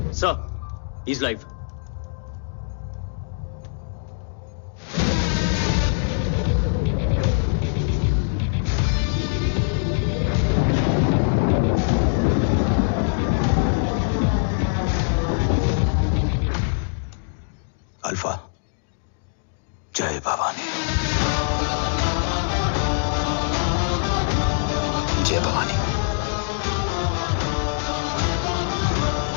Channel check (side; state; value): right; silent; digital silence